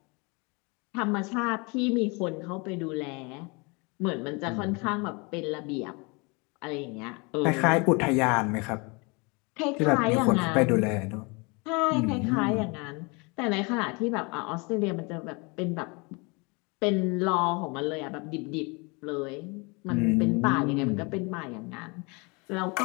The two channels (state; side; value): quieter; right; 29.4 dB